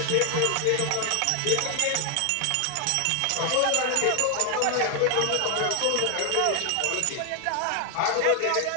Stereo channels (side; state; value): both; different; correlation 0.00